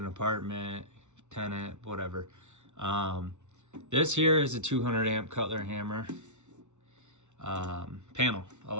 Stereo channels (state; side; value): late; left; 0.83 ms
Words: apartment, tenant, whatever. This here is a 200 amp Cutler hammer panel,